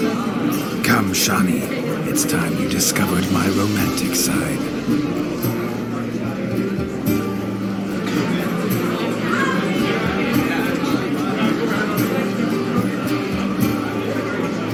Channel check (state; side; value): identical; both; correlation 1.00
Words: Come, Shani, it's time you discovered my romantic side.